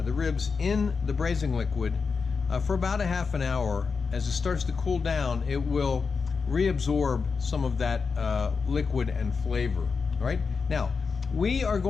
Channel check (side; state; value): right; quieter; 5.1 dB